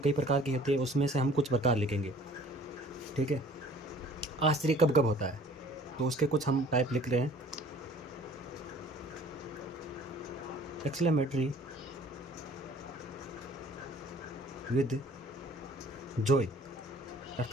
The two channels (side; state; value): both; normal; correlation 0.52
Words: प्रकार की होती है, उसमें से हम कुछ प्रकार लिखेंगे, ठीक है। आश्चर्य कब कब होता है तो उसके कुछ हम टाइप लिख रहे हैं। एक्सक्लेमेटरी विद जॉय,